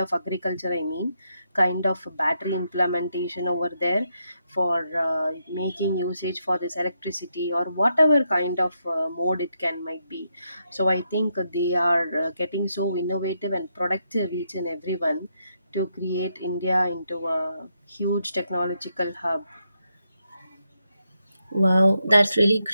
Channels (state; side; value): inverted; both; correlation -0.81